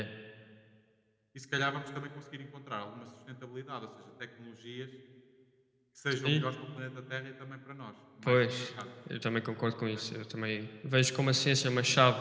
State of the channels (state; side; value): identical; both; correlation 1.00